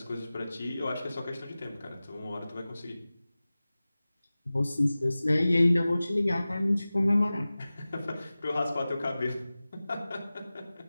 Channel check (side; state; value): both; inverted; correlation -0.97